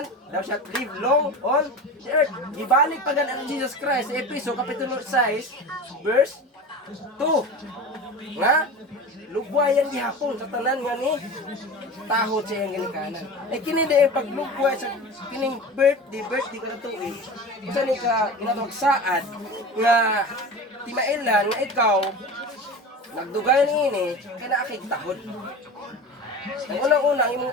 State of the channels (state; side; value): normal; both; correlation 0.31